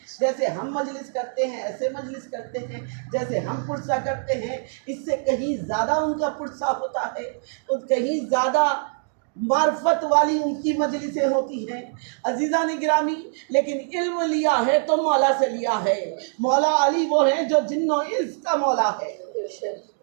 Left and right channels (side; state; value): left; silent; digital silence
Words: جیسے ہم مجلس کرتے ہیں ایسے مجلس کرتے ہیں، جیسے ہم پرسہ کرتے ہیں اس سے کہیں زیادہ ان کا پرسہ ہوتا ہے، اور کہیں زیادہ معرفت والی ان کی مجلسیں ہوتی ہیں۔ عزیزان گرامی، لیکن علم لیا ہے تو مولا سے لیا ہے۔ مولا علی وہ ہیں جو جن و انس کا مولا ہے،